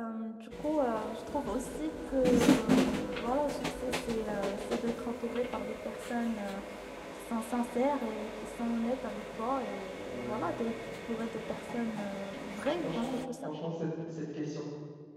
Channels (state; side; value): identical; both; correlation 1.00